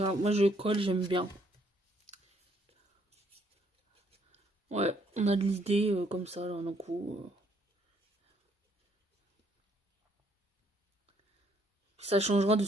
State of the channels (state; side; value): normal; both; correlation 0.68